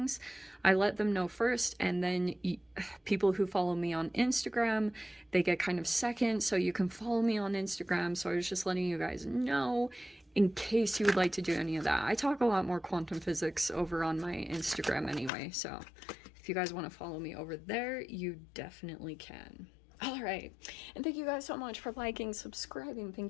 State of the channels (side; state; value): right; drops out; at 15.3 s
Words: I let them know first, and then people who follow me on Instagram, they get kind of second, so you can follow me on Instagram. So I was just letting you guys know in case you would like to do any of that. I talk a lot more quantum physics over on my Instagram anyway, so if you guys want to follow me over there, you definitely can. All right, and thank you guys so much for liking, subscribing.